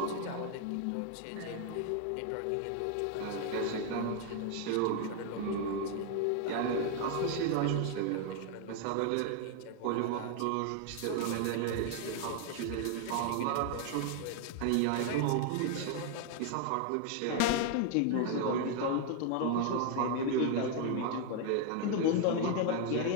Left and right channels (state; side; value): different; both; correlation 0.00